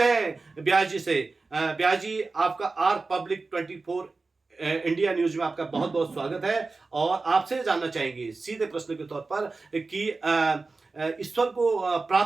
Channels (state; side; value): quieter; left; 3.8 dB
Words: हैं व्यास जी से। व्यास जी, आपका आर पब्लिक 24 इंडिया न्यूज में आपका बहुत बहुत स्वागत है और आपसे जानना चाहेंगे सीधे प्रश्न के तौर पर कि ईश्वर को